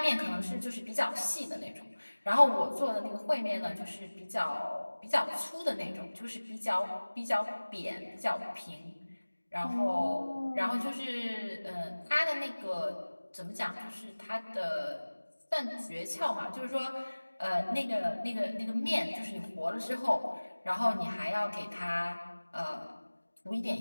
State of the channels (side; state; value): both; inverted; correlation -1.00